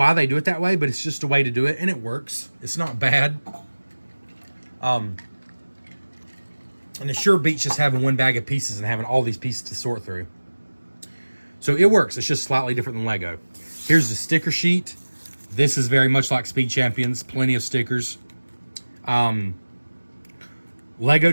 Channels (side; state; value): both; inverted; correlation -1.00